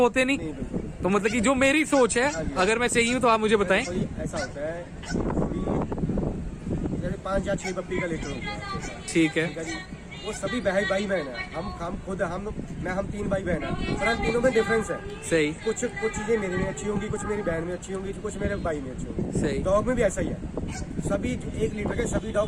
नहीं। तो मतलब कि जो मेरी सोच है, अगर मैं सही हूँ तो आप मुझे बताएं। ऐसा होता है, 5 या 6 पप्पी का लीटर होता है। ठीक है। वो सभी भाई बहन है। हम खुद हम 3 भाई बहन है, पर हम तीनों में डिफरेंस है। सही कुछ चीजें मेरे में अच्छी होंगी, कुछ मेरी बहन में अच्छी होंगी, कुछ मेरे भाई में अच्छी होंगी। सही। डॉग में भी ऐसा ही है, सभी 1 लीटर के सभी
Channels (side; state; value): both; identical; correlation 1.00